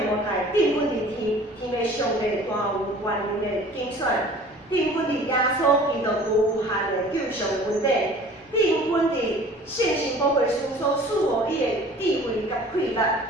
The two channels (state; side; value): normal; both; correlation 0.47